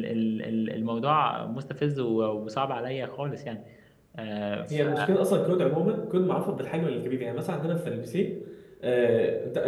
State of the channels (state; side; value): identical; both; correlation 1.00